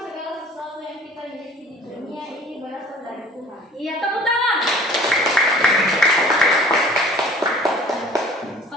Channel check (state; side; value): normal; both; correlation 0.49